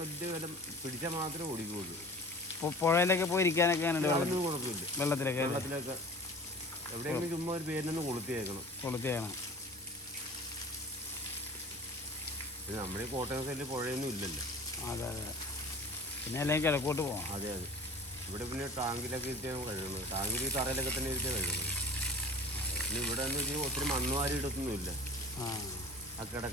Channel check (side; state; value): both; normal; correlation 0.41